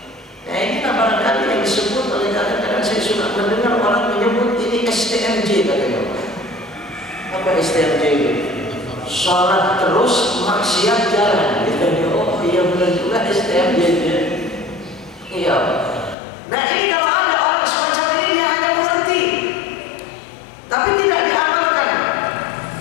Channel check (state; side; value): drops out; right; at 16.2 s